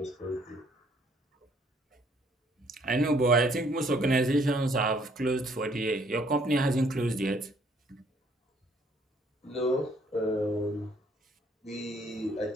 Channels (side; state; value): both; normal; correlation 0.64